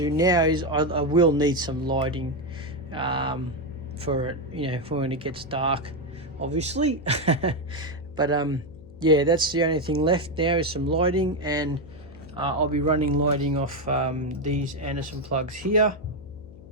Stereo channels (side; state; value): left; noise; hum, 19 dB below the sound